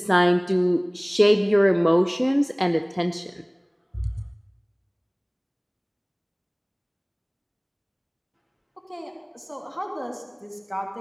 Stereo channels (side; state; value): both; identical; correlation 1.00